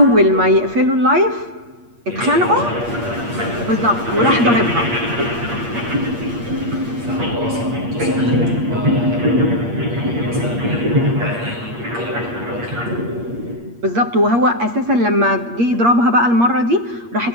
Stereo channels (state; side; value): late; left; 8.5 ms